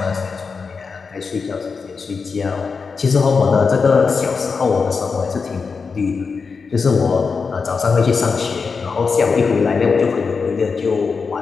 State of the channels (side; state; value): right; quieter; 5.1 dB